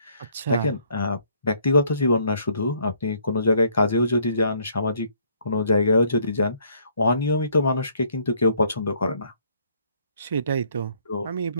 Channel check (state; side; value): inverted; both; correlation -0.64